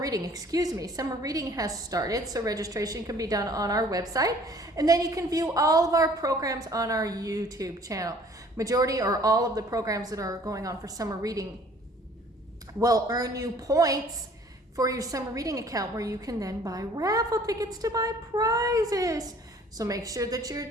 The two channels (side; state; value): both; normal; correlation 0.54